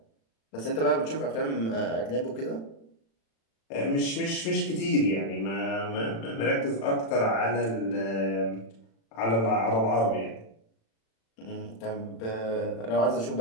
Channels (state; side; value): late; right; 36 ms